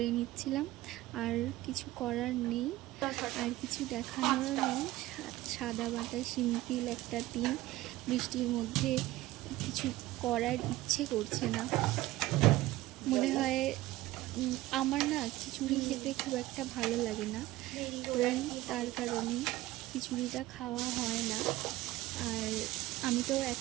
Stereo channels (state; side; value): quieter; left; 17.1 dB